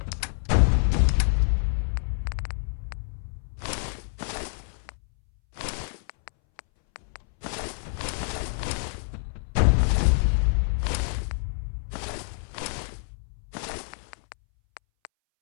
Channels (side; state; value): right; silent; 60 dB below the other